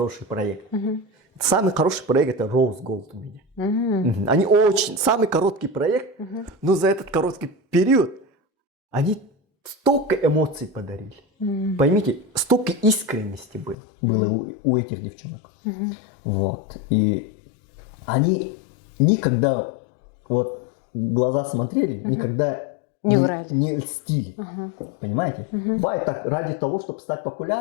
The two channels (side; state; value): right; drops out; at 13.8 s